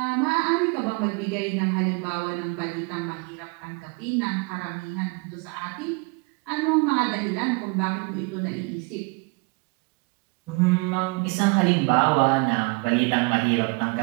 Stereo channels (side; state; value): left; quieter; 30.6 dB